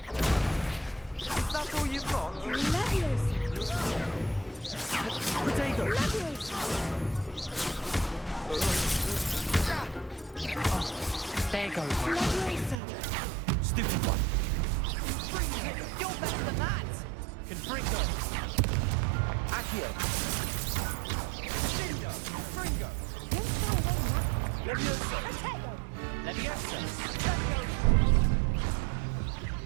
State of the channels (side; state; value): left; drops out; at 12.8 s